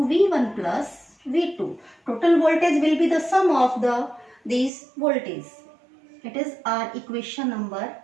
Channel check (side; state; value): left; drops out; at 4.7 s